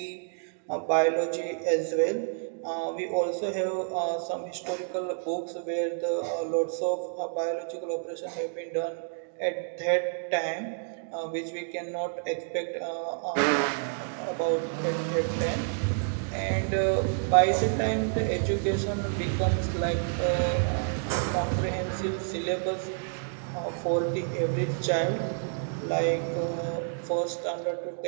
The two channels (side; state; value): left; silent; digital silence